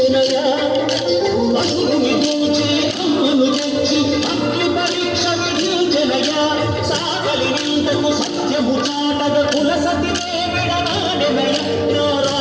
అసురుని దోచి అమ్మను తెచ్చి అగ్ని పరీక్ష విధించెనయా సాగలి నిందకు సత్యము చాటగ కుల సతినే విడనాడెనయ నా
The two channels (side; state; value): both; identical; correlation 1.00